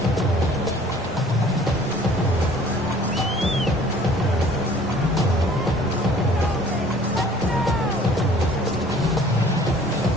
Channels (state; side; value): normal; both; correlation 0.53